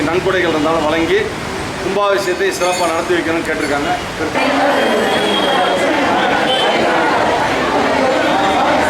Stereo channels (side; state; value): both; identical; correlation 1.00